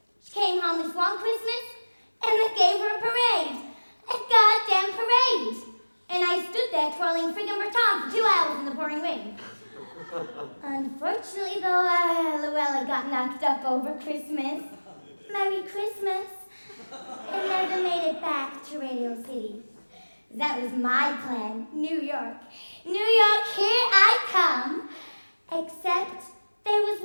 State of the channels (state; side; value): inverted; both; correlation -1.00